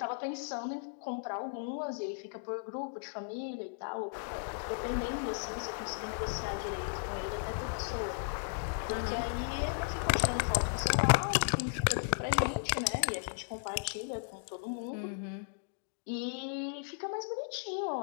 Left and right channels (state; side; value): silent; right; digital silence